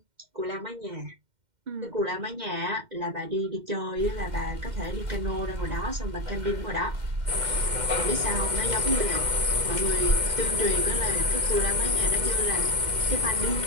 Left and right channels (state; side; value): late; left; 2.1 ms